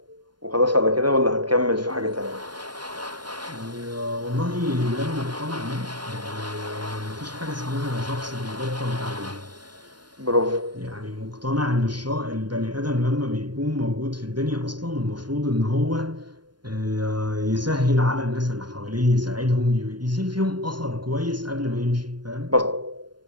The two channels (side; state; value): left; late; 0.71 ms